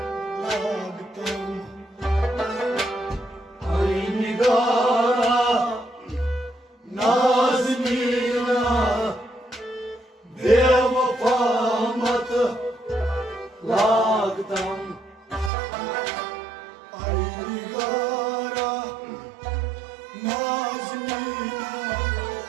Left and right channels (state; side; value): drops out; left; at 15.5 s